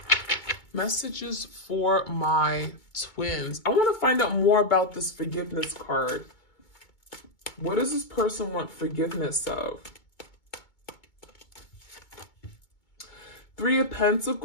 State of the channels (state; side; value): late; right; 2.2 ms